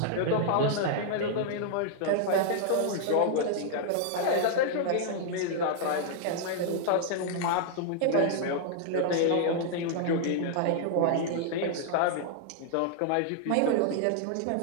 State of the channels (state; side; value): different; both; correlation -0.01